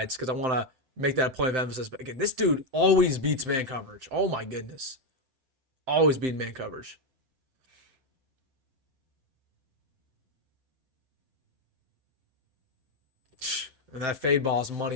because I want to make that a point of emphasis. But again, this dude always beats man coverage. Oh my goodness. Always beating man coverage. And that fade ball is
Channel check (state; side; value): late; left; 7.7 ms